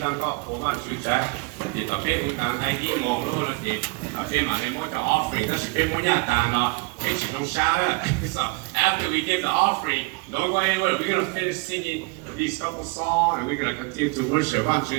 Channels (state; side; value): quieter; left; 27.5 dB